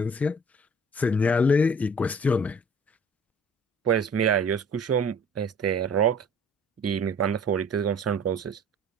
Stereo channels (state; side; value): normal; both; correlation 0.49